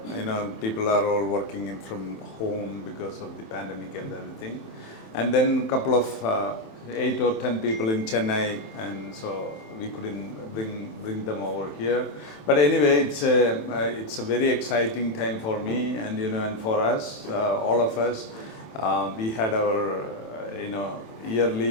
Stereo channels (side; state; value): right; late; 27 ms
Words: People are all working in from home because of the pandemic and everything, and then a couple of 8 or 10 people in Chennai, and so we couldn't bring them over here. But anyway, it's a very exciting time for me, and and for us, all of us. We had our